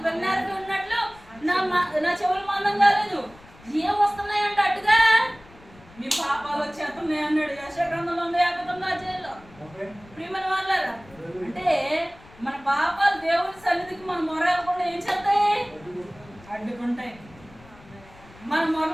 వెన్నెరవి ఉన్నట్లు నా చెవులు మందం కాలేదు. ఏం వస్తున్నాయంట అడ్డుగా? మీ పాపాలు వచ్చేస్తున్నాయి అన్నాడు యెషయా గ్రంథంలో 159 ప్రియమైన వాళ్ళారా. అంటే మన పాపాలు దేవుని సన్నిధికి మన మొరకుండా ఏం చేస్తాయి? అడ్డుకుంటాయి. మన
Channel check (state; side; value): noise; left; rumble, 23 dB below the sound